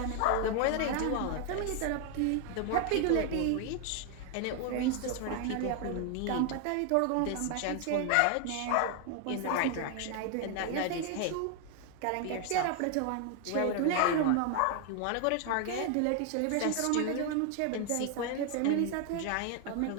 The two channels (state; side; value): different; both; correlation 0.00